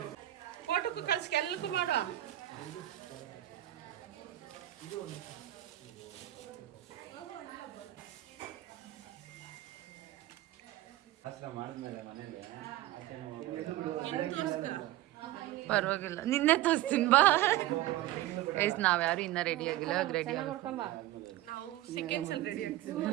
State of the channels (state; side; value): quieter; left; 15.3 dB